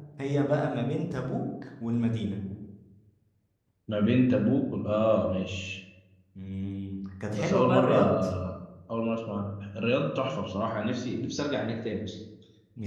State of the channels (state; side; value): identical; both; correlation 1.00